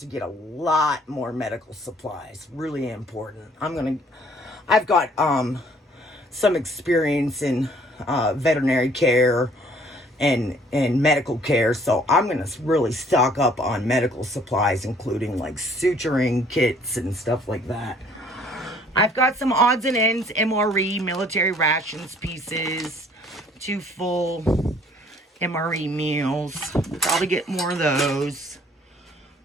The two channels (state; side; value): normal; both; correlation 0.59